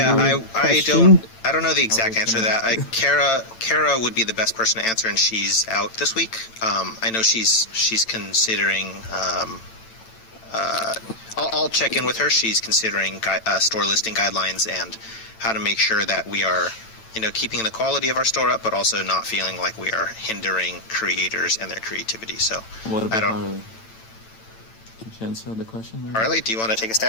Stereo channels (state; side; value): late; right; 8.9 ms